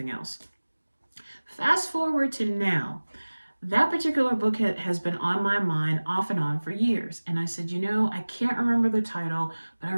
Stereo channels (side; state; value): both; inverted; correlation -1.00